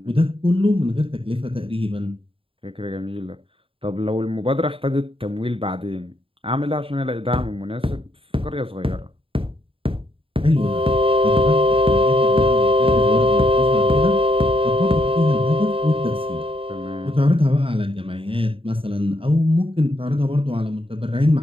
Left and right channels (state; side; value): late; left; 0.26 ms